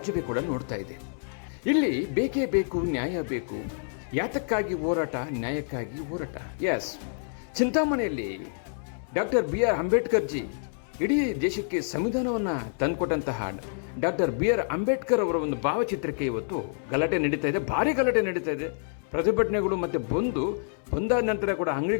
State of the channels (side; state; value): right; silent; 60 dB below the other